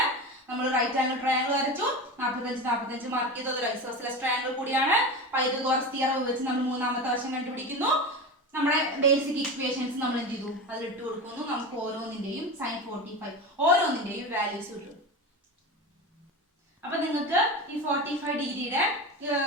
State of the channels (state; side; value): normal; both; correlation 0.25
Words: നമ്മൾ റൈറ്റ് ആംഗിൾ ട്രയാങ്കിൾ വരച്ചു, 45 മാർക്ക് ചെയ്തത് ഒരു ഐസോസെലസ് ട്രയാങ്കിൾ കൂടിയാണ്. പൈതഗോറസ് തിയറം വെച്ച് നമ്മൾ മൂന്നാമത്തെ വശം കണ്ടുപിടിക്കുന്നു. നമ്മുടെ ബേസിക് ഇക്വേഷൻസ് നമ്മൾ എന്ത് ചെയ്തു, അതിൽ ഇട്ട് കൊടുക്കുന്നു. നമുക്ക് ഓരോന്നിന്റെയും സൈൻ 45 ഓരോന്നിന്റെയും വാല്യൂസ് കിട്ടും. അപ്പൊ നിങ്ങൾക്ക് ഈ 45 ഡിഗ്രിയുടെ